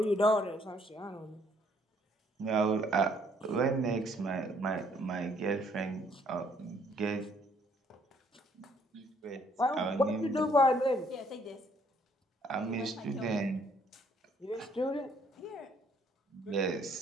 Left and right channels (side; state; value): both; normal; correlation 0.65